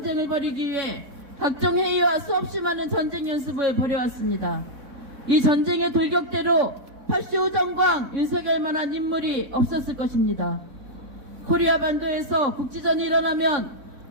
벌이기 위해 각종 회의와 수없이 많은 전쟁 연습을 벌여왔습니다. 이 전쟁의 돌격대로 파시오 정광 윤석열만한 인물이 없었을 것입니다. 코리아 반도에서 국지전이 일어나면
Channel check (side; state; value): left; late; 4.1 ms